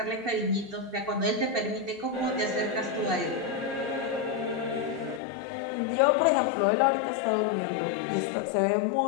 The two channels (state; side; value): drops out; right; at 5.2 s